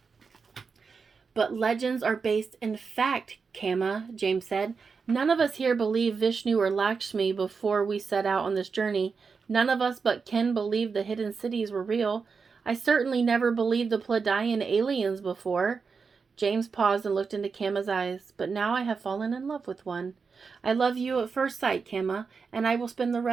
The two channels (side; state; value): left; quieter; 5.2 dB